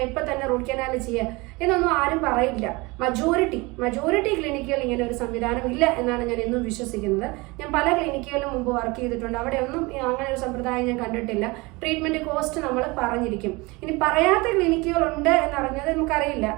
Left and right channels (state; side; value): quieter; left; 24.6 dB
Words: ഇപ്പം തന്നെ റൂട്ട് കനാൽ ചെയ്യുക എന്നൊന്നും ആരും പറയില്ല. മജോറിറ്റി ക്ലിനിക്കുകൾ ഇങ്ങനെ ഒരു സംവിധാനം ഇല്ല എന്നാണ് ഞാൻ എന്നും വിശ്വസിക്കുന്നത്. ഞാൻ പല ക്ലിനിക്കുകളിലും മുമ്പ് വർക്ക് ചെയ്തിട്ടുണ്ട്, അവിടെ ഒന്നും അങ്ങനെ ഒരു സമ്പ്രദായം ഞാൻ കണ്ടിട്ടില്ല. ട്രീറ്റ്മെന്റ് കോസ്റ്റ് നമ്മൾ പറഞ്ഞിരിക്കും. ഇനി പറയാത്ത ക്ലിനിക്കുകളുണ്ട് എന്നറിഞ്ഞത് നമുക്കറിയില്ല.